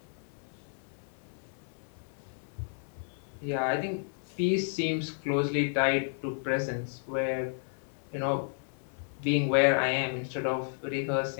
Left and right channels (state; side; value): silent; right; 56 dB below the other